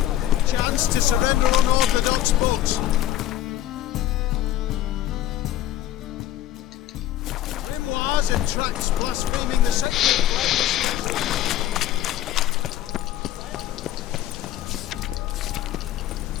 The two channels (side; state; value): right; quieter; 12.8 dB